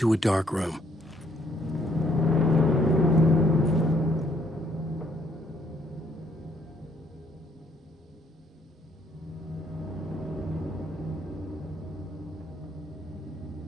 a dark room.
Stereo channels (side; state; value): both; normal; correlation 0.68